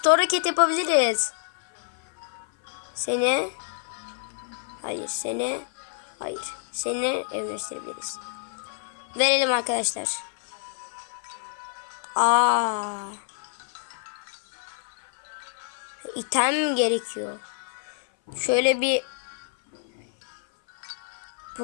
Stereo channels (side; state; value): right; silent; 57 dB below the other